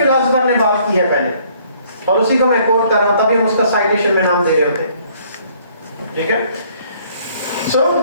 ने बात की है पहले, और उसी को मैं कोट कर रहा हूं, तभी हम उसका साइटेशन में नाम दे रहे होते हैं। ठीक है, so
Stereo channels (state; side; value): inverted; both; correlation -0.61